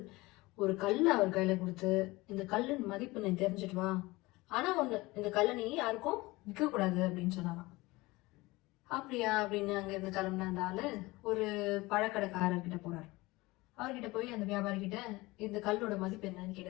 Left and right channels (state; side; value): quieter; right; 21.3 dB